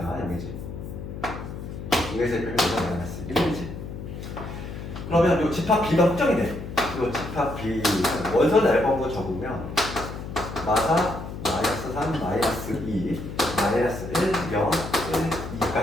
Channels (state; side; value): noise; left; hum, 9 dB below the sound